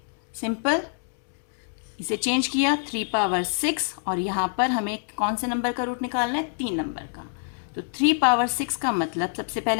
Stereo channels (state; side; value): silent; right; digital silence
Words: सिंपल इसे चेंज किया 3 पावर 6 और यहाँ पर हमें कौन से नंबर का रूट निकालना है, 3 नंबर का। तो 3 पावर 6 का मतलब सबसे